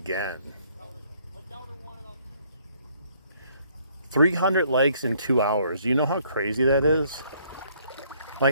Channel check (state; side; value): inverted; both; correlation -0.65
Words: 300 likes in 2 hours. You know how crazy that is?